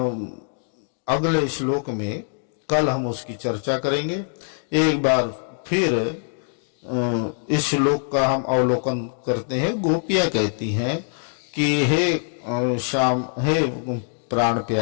अगले श्लोक में कल हम उसकी चर्चा करेंगे। एक बार फिर इस श्लोक का हम अवलोकन करते हैं। गोपियां कहती हैं कि हे श्याम, हे प्राण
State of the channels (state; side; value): silent; right; 62 dB below the other